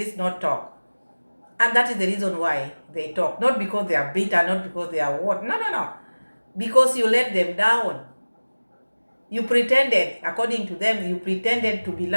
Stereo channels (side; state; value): both; inverted; correlation -1.00